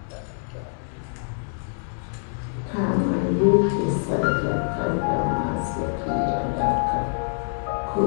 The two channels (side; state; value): right; silent; digital silence